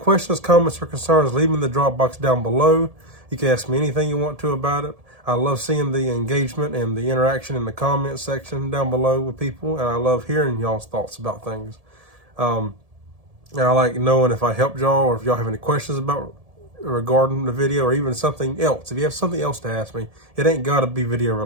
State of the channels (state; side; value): late; left; 1.7 ms